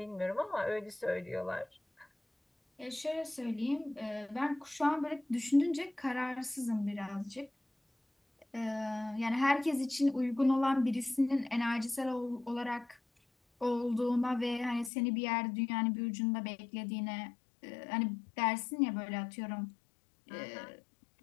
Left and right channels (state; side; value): drops out; right; at 14.9 s